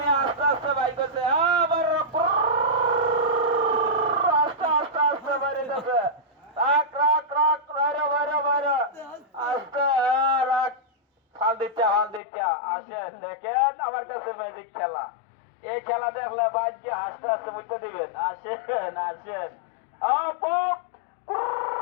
আস্তে আস্তে বাইক আছে, আবার আস্তে আস্তে আস্তে বাইরে যাবে। রাখ রাখ রাখ বাইরে বাইরে বাইরে আস্তে রাখ। ফাল দিচ্ছে আসেন, দেখেন আমার কাছে ম্যাজিক খেলা। এই খেলা দেখলে বাইক গিয়ে হাসতে হাসতে বুঝতে দিবেন। আসেন আসেন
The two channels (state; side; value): drops out; right; at 12.2 s